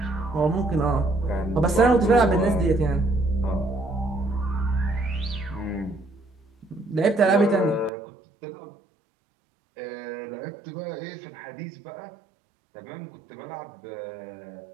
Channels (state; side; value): drops out; left; at 7.9 s